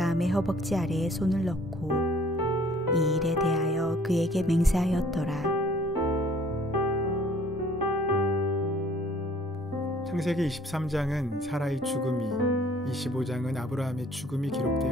허벅지 아래에 손을 넣고 이 일에 대하여 그에게 맹세하였더라. 창세기 23장은 사라의 죽음이, 25장은 아브라함의 죽음이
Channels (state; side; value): normal; both; correlation 0.56